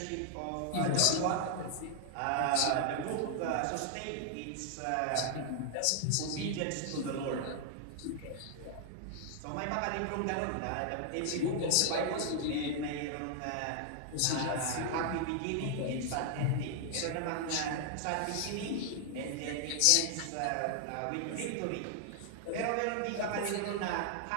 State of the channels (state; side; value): different; both; correlation 0.00